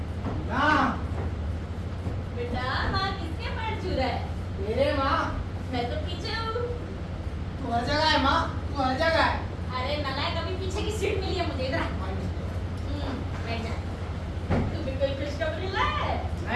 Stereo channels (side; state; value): both; identical; correlation 1.00